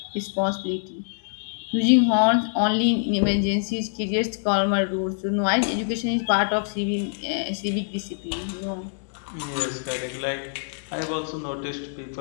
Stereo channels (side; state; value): right; silent; digital silence